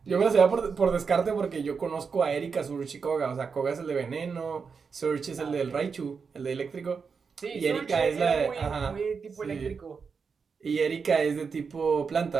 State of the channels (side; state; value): left; quieter; 5.5 dB